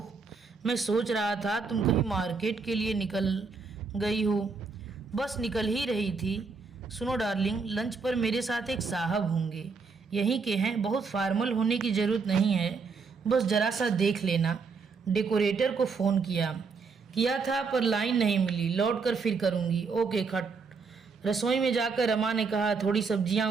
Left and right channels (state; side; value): quieter; left; 4.8 dB